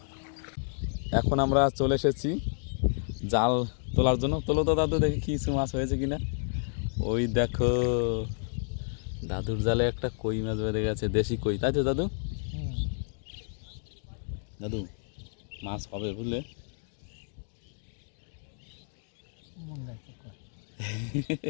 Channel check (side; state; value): right; silent; digital silence